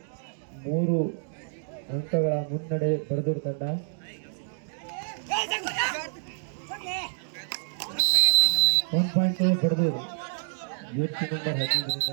3 ಅಂಕಗಳ ಮುನ್ನಡೆ ಬಡದೂರ್ ತಂಡ. .2 ಬಡದೂರ್. ಜರ್ಸಿ ನಂಬರ್ 15ರಿಂದ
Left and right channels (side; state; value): left; silent; digital silence